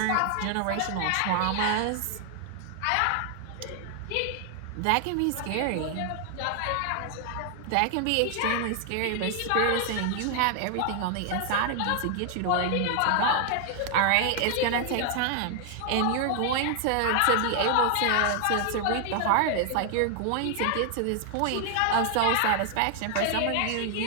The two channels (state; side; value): different; both; correlation 0.00